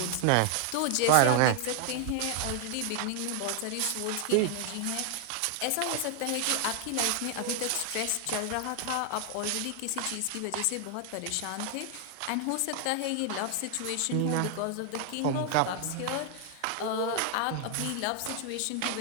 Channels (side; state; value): both; different; correlation 0.00